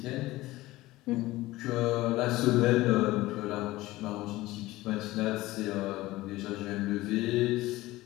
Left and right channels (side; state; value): right; quieter; 18.1 dB